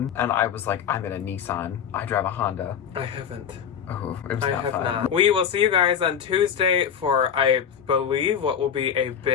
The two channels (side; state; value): right; quieter; 8.1 dB